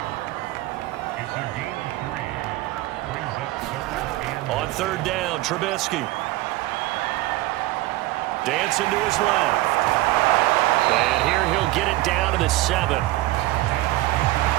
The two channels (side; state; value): left; quieter; 18.0 dB